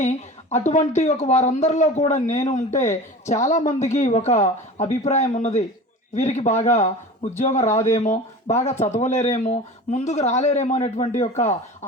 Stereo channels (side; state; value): both; normal; correlation 0.36